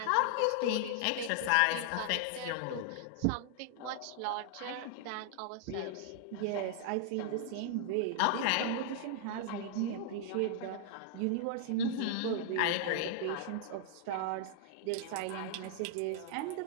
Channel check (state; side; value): different; both; correlation -0.01